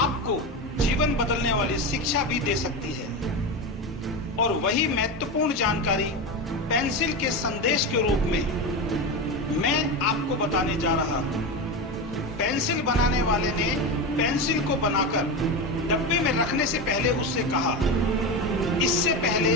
जीवन बदलने वाली शिक्षा भी दे सकती है। और वही महत्वपूर्ण जानकारी पेंसिल के संदेश के रूप में मैं आपको बताने जा रहा हूं। पेंसिल बनाने वाले ने पेंसिल को बनाकर डब्बे में रखने से पहले उससे कहा, इससे पहले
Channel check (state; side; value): normal; both; correlation 0.18